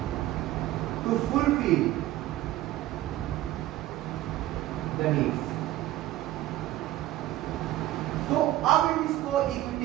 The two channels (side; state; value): left; quieter; 15.2 dB